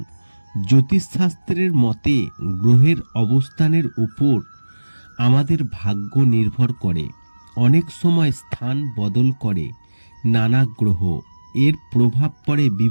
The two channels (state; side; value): inverted; both; correlation -1.00